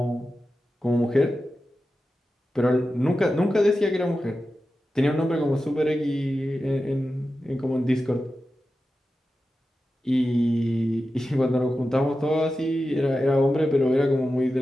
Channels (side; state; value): both; normal; correlation 0.92